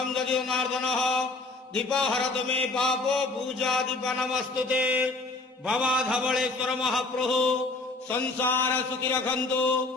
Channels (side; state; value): right; quieter; 3.3 dB